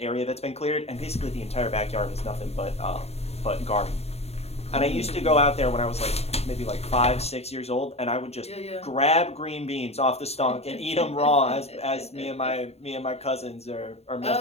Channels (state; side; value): late; right; 0.30 ms